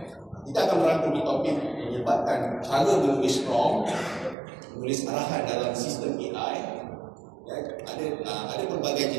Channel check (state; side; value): drops out; left; at 4.4 s